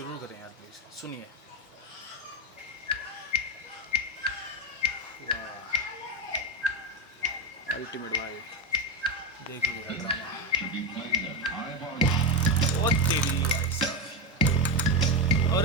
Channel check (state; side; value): normal; both; correlation 0.13